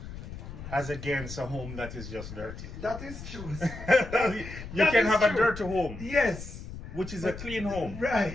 as against a home that is just dirty. That is true. You can have a dirty home. Yes. Which is a clean home.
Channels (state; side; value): noise; left; rumble, 11 dB below the sound